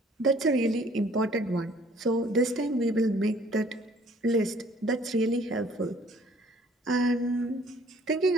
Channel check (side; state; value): both; normal; correlation 0.57